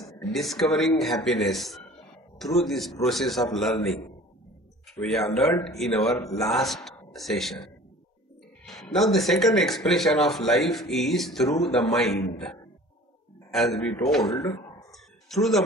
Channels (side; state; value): both; normal; correlation 0.45